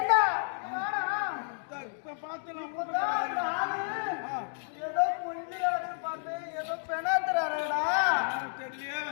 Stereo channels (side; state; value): right; silent; 57 dB below the other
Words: ஏதோ கொஞ்சம் பார்த்தேன் ஏதோ பெணாத்துறாருடா